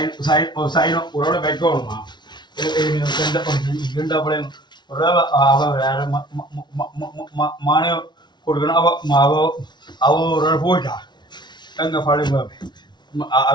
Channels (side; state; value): right; late; 0.21 ms